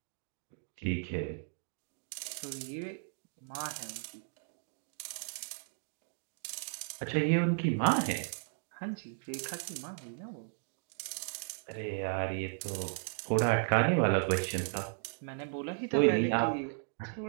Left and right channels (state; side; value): silent; left; 54 dB below the other